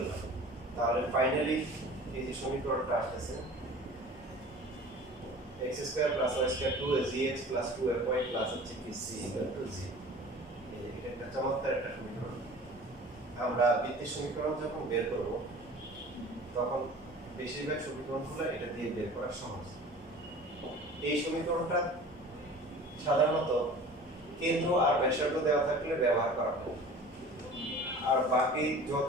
তাহলে ফাইনালি এই যে সমীকরণটা আসছে x square plus y square 2gx plus 2fy plus হচ্ছে কি c ইকুয়াল টু 0। এটা একটা চমৎকার একটা সমীকরণ। আমরা বৃত্তের সমীকরণ যখন বের করব তখন বেশিরভাগ সমীকরণগুলো এটা দিয়ে বের করা সহজ। এই সমীকরণটা সাধারণত কেন্দ্র আর ব্যাসার্ধ দেওয়া থাকলে ব্যবহার করা হয়, আর বাকি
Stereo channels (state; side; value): normal; both; correlation 0.42